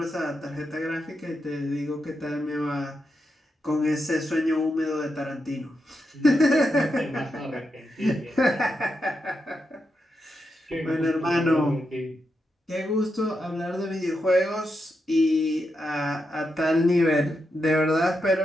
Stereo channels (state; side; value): normal; both; correlation 0.85